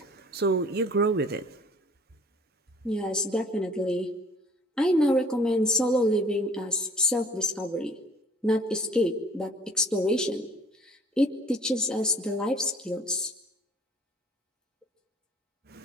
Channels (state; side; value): normal; both; correlation 0.53